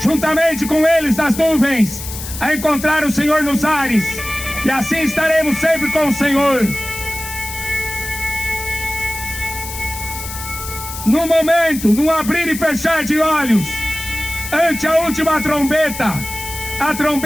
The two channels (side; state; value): left; noise; hiss, 10 dB below the sound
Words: com eles nas nuvens, a encontrar o Senhor nos ares. E assim estaremos sempre com o Senhor. No momento, no abrir e fechar de olhos, ante a última trombeta, a